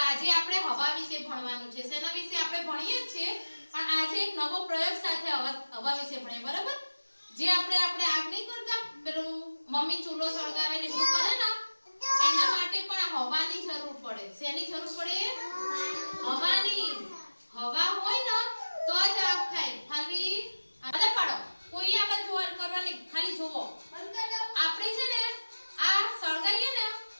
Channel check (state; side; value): inverted; both; correlation -1.00